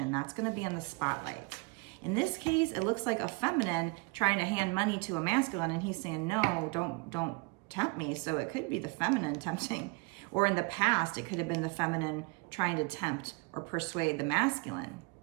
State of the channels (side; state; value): left; quieter; 28.9 dB